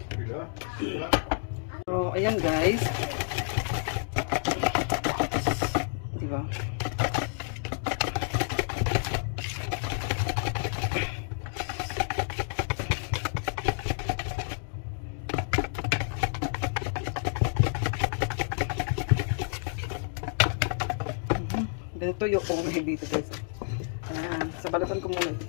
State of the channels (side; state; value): right; silent; 58 dB below the other